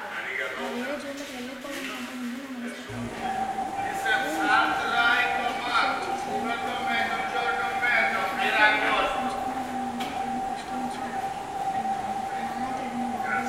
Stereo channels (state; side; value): identical; both; correlation 1.00